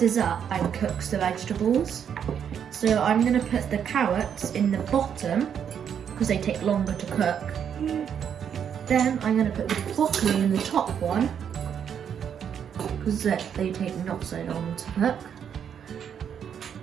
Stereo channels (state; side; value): quieter; left; 8.2 dB